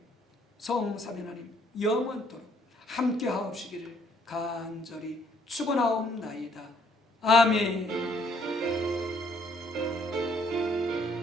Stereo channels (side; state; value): both; normal; correlation 0.65